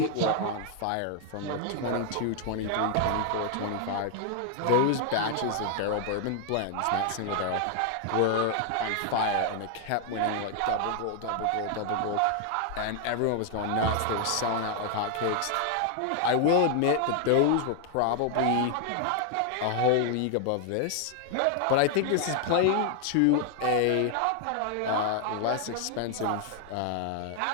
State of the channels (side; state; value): both; different; correlation 0.00